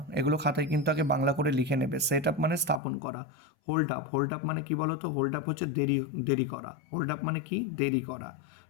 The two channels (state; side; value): drops out; right; at 2.8 s